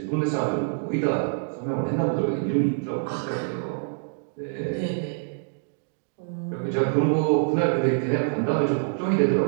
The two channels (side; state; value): left; silent; digital silence